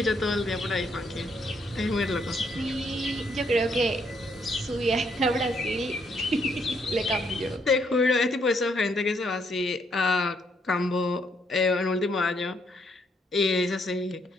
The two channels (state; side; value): normal; both; correlation 0.72